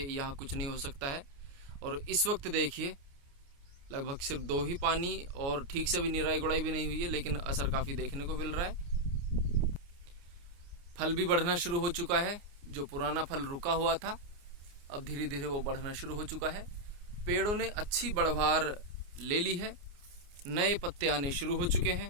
कुछ नहीं हो सकता है। और इस वक्त देखिए लगभग सिर्फ 2 ही पानी और ठीक से भी निराई गुड़ाई भी नहीं हुई है, लेकिन असर काफ़ी देखने को मिल रहा है। फल भी बढ़ना शुरू हो चुका है। जो पुराना फल रुका हुआ था अब धीरे धीरे वो बढ़ना शुरू हो चुका है। पेड़ों ने अच्छी बढ़वार ले ली है, नए पत्ते आने शुरू हो चुके हैं।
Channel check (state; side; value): late; left; 29 ms